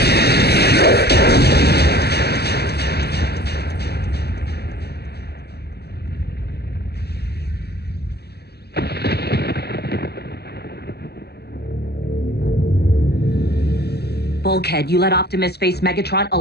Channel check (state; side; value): late; right; 0.47 ms